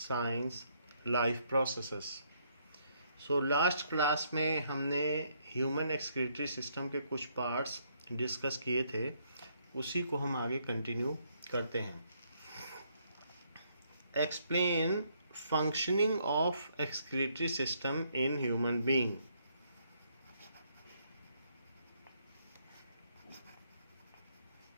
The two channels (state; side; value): inverted; both; correlation -0.71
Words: life processes. Last class में हमने ह्यूमन एक्सक्रीटरी सिस्टम के कुछ पार्ट्स डिस्कस किए थे, उसी को हम आगे कंटिन्यू करते हैं। Explain functioning of excretory system in human being.